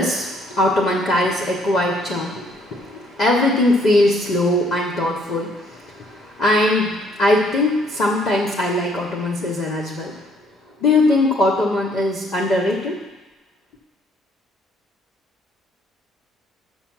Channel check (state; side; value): normal; both; correlation 0.65